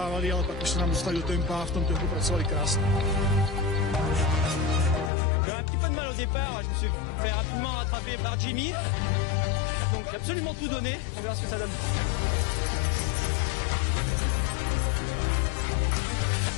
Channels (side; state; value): right; drops out; at 5.1 s